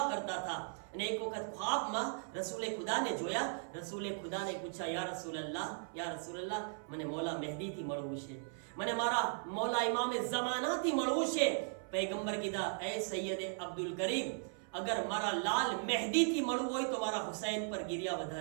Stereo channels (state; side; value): silent; left; 53 dB below the other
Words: કરતા હતા. અને એક વખત ખ્વાબમાં રસૂલે ખુદાને જોયા. રસૂલે ખુદાને પૂછ્યા, યા રસૂલલ્લાહ, મને મૌલા મહેદીથી મળવું છે, મને મારા મૌલા ઇમામે ઝમાનાથી મળવું છે. પૈગંબર કીધા, એ સૈયદ અબ્દુલ કરીમ, અગર મારા લાલ મહેદીથી મળવું હોય તો મારા હુસૈન પર ગિરિયા